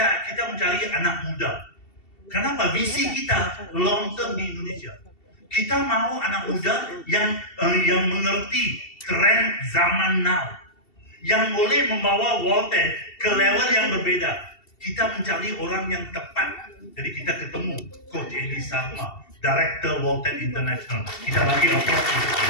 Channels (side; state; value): right; late; 2.7 ms